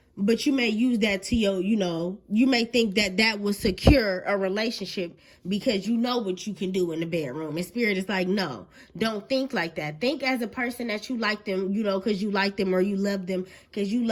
But you may use that to your, you know, you may think that will secure a relationship because you know what you can do in the bedroom. And Spirit is like, no, don't think like that. Think as a person that you like them, you know, because you like them, or you love them because you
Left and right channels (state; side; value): identical; both; correlation 1.00